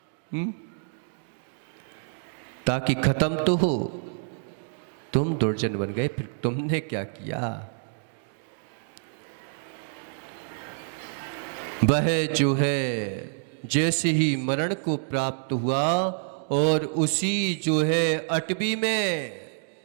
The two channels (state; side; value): silent; left; digital silence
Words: ताकि खत्म तो हो। तुम दुर्जन बन गए, फिर तुमने क्या किया? वह जो है जैसे ही मरण को प्राप्त हुआ और उसी जो है अटवी में